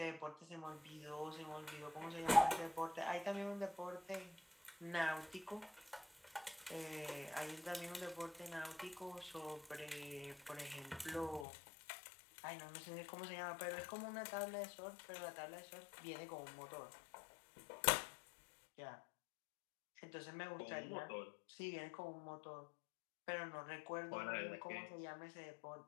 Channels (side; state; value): right; drops out; at 11.5 s